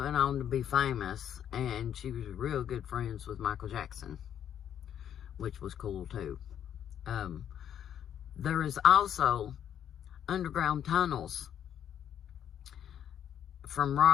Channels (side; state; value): right; quieter; 9.7 dB